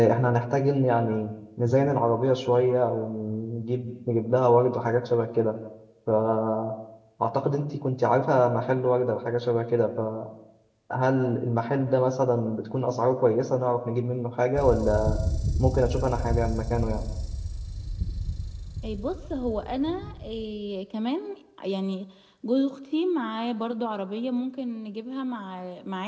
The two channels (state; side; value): identical; both; correlation 1.00